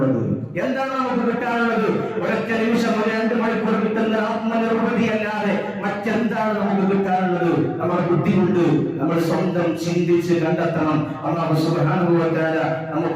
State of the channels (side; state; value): both; identical; correlation 1.00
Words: ഒരൊറ്റ നിമിഷം, 2 മണിക്കൂർ കിട്ടുന്ന ആത്മനിർവൃതി അല്ലാതെ മറ്റെന്താണ് നമുക്ക് കിട്ടാനുള്ളത്? നമ്മുടെ ബുദ്ധി കൊണ്ട് നമ്മൾ സ്വന്തം ചിന്തിച്ച് കണ്ടെത്തണം. അല്ലാഹു സുബ്ഹാനഹു വ തആല